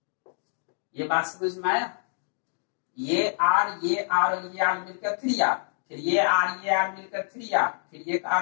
ये बात समझ में आया? ये R और ये R मिलकर 3R, फिर ये R मिलकर 3R, फिर ये R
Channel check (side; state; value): right; silent; digital silence